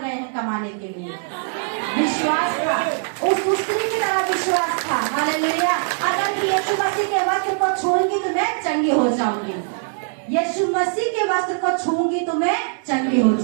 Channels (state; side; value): silent; left; 63 dB below the other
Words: गए हैं कमाने के लिए। विश्वास था, उस स्त्री की तरह विश्वास था। हालेलुया। अगर यीशु मसीह के वस्त्र को छूंगी तो मैं चंगी हो जाऊंगी, यीशु मसीह के वस्त्र को छूंगी तो मैं चंगी हो